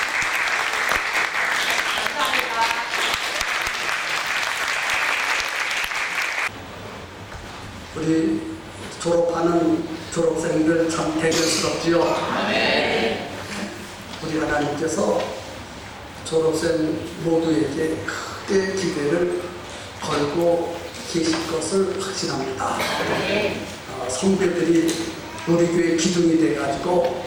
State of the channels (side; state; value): both; identical; correlation 1.00